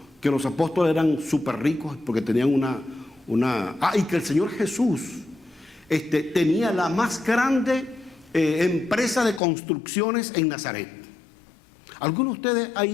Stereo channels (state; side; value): drops out; right; at 9.4 s